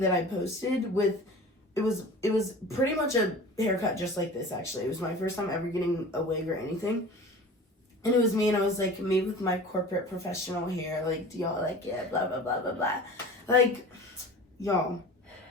that I posted with... It was pretty much a haircut just like this, actually. It was my first time ever getting a wig or anything. And it was me, and I was, like, me with my corporate professional hair. Like, do y'all like it? Blah, blah, blah, blah, blah. Like, y'all.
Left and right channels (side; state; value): both; normal; correlation 0.39